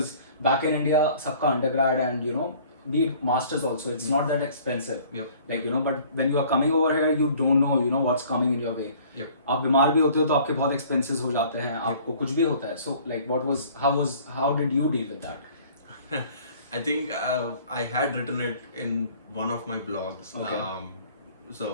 back in India सबका undergrad and, you know, be it masters also, it's not that expensive. Yep. Like, you know, but when you are coming over here, you don't know, you know, what's coming in your way. Yep. आप बीमार भी होते हो तो आपके बहुत expenses हो जाते हैं, आपको कुछ भी होता है. So like, how did you deal with that? I think I had written it in one of my blogs. Okay.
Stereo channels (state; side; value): inverted; both; correlation -0.52